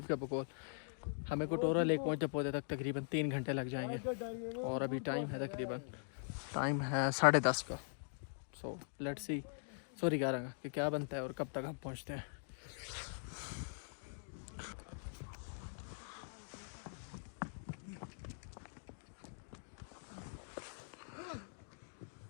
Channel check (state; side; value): silent; right; digital silence